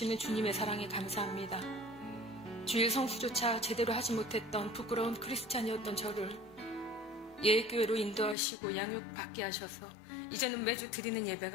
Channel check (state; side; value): drops out; right; at 8.3 s